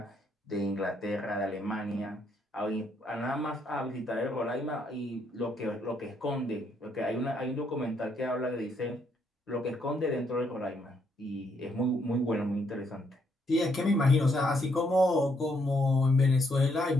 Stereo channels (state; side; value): normal; both; correlation 0.73